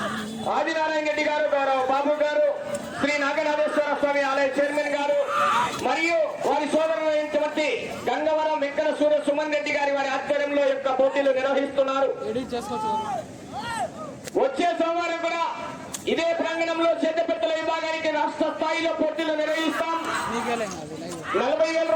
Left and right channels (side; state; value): both; identical; correlation 1.00